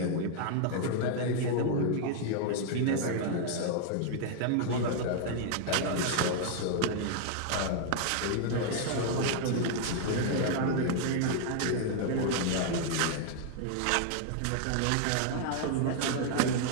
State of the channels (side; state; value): both; different; correlation 0.00